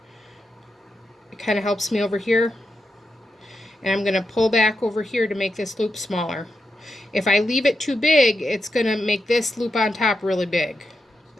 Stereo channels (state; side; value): normal; both; correlation 0.86